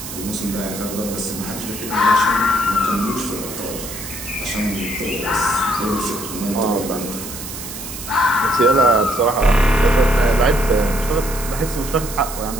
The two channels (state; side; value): noise; right; hiss, 10 dB below the sound